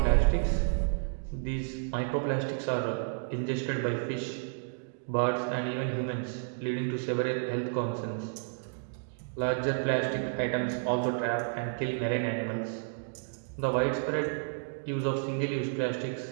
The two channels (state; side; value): silent; left; digital silence